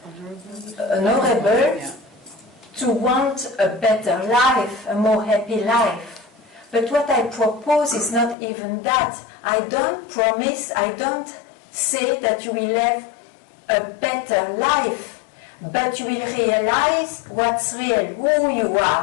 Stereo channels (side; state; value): right; drops out; at 8.3 s